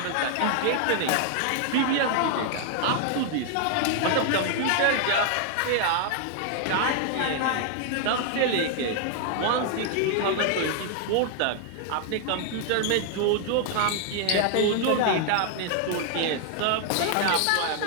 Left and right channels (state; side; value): different; both; correlation 0.00